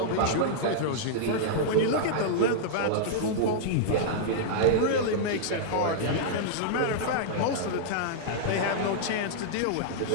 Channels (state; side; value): different; both; correlation -0.02